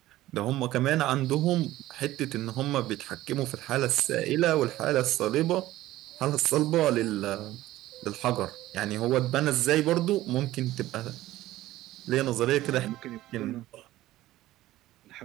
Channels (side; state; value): left; quieter; 15.7 dB